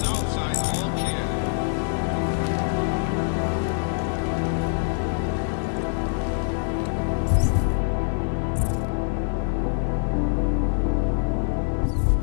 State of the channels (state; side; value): silent; right; 62 dB below the other